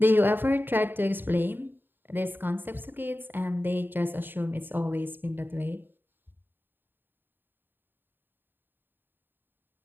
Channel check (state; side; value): late; left; 0.095 ms